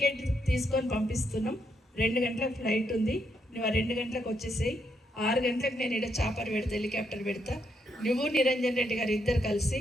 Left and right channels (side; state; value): both; normal; correlation 0.78